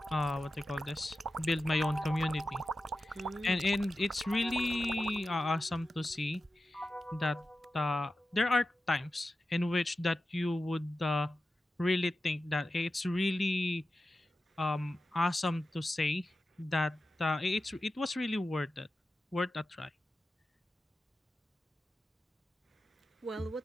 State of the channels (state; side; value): normal; both; correlation 0.93